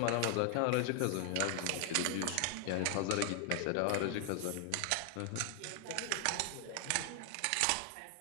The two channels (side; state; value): both; different; correlation 0.00